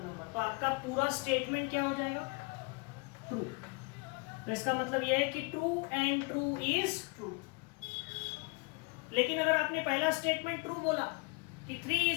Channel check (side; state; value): right; quieter; 30.1 dB